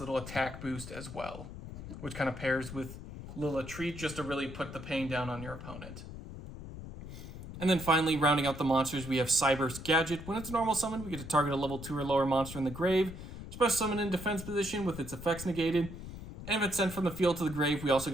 attack boost as well, which kind of pairs with Lila Treat just to really put the pain down on your opponent. And then finally, rounding out the monsters, we have Cyberse Gadget. When it's a normal summon, we get to target a level 2 or lower monster in the grave, special summon in defense position with its effects negated, and if it's sent from the field to the grave, we also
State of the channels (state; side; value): noise; left; rumble, 11 dB below the sound